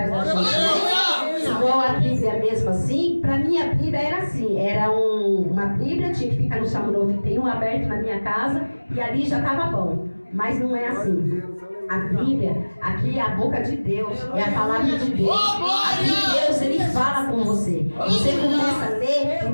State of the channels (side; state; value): both; inverted; correlation -1.00